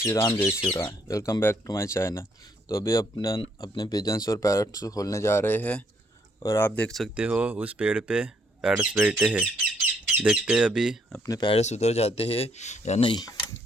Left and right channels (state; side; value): normal; both; correlation 0.70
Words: राम जय Shri Ram. Welcome back to my channel. तो अभी अपने पिजन्स और पैरट्स को खोलने जा रहे हैं और आप देख सकते हो उस पेड़ पे पैरट्स बैठे हैं। देखते हैं अभी अपने पैरट्स उधर जाते हैं या नहीं।